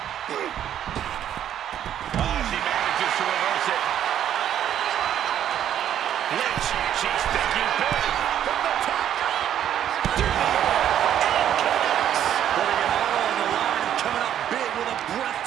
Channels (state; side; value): quieter; left; 10.4 dB